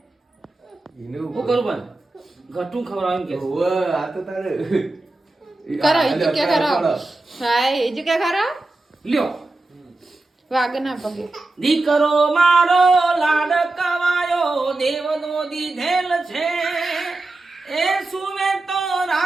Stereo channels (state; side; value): quieter; left; 3.0 dB